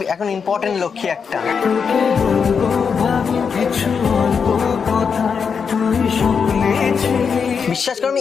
এখন ইম্পর্টেন্ট লক্ষ্মী একটা। বিশ্বাস করো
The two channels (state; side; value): quieter; right; 6.1 dB